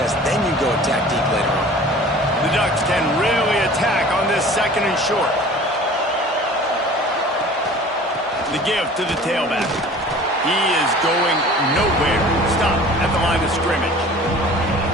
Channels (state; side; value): normal; both; correlation 0.44